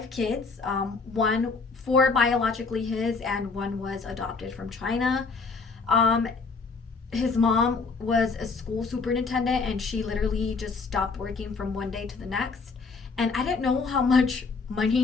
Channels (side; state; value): right; quieter; 4.4 dB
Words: kids, 4 biologically his, and 1 was adopted from China. His mom was a school superintendent, and she literally just stopped working from one day to the next. And I didn't know how much